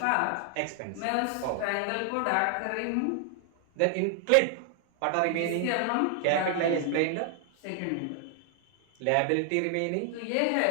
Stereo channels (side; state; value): both; different; correlation 0.00